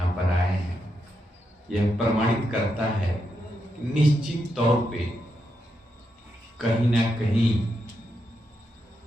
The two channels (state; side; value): normal; both; correlation 0.83